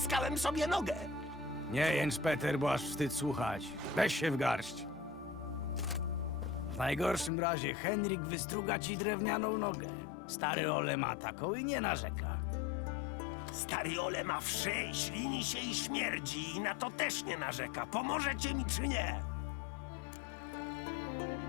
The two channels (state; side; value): drops out; right; at 7.3 s